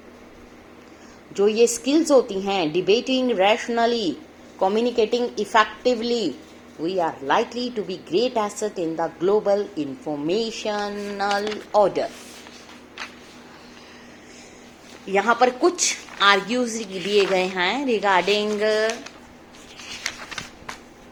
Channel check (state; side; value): identical; both; correlation 1.00